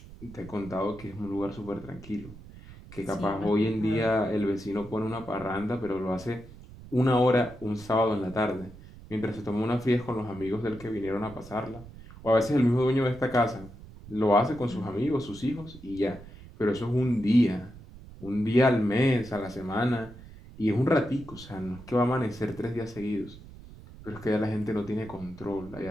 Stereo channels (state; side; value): noise; right; rumble, 18 dB below the sound